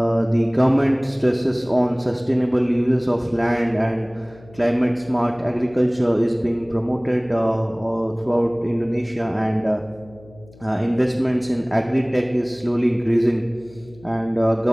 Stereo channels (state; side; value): noise; left; hum, 24 dB below the sound